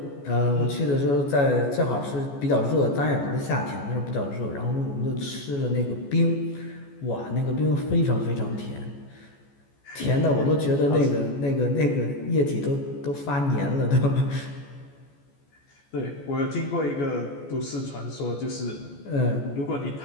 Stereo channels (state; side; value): late; right; 14 ms